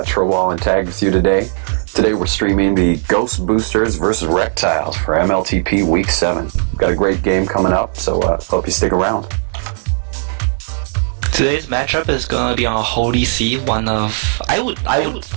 Trowall and Tag with you today. Today we're streaming the Ghostboosters versus Rektiles for MLTP Week 7. We've got a great game coming up, so hope you stick around. Today's matchup is gonna be on Holy See, one of I would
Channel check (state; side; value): silent; left; digital silence